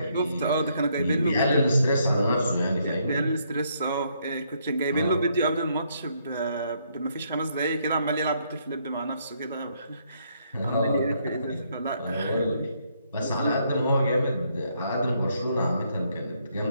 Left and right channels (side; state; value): both; inverted; correlation -0.72